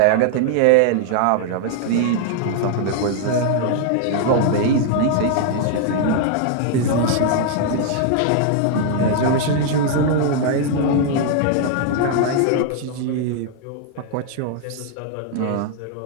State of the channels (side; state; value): both; different; correlation 0.00